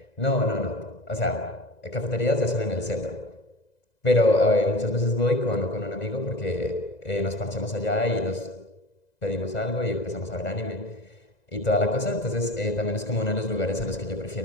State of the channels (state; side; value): late; right; 1.9 ms